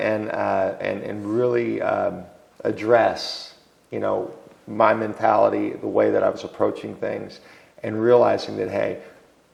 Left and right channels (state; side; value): identical; both; correlation 1.00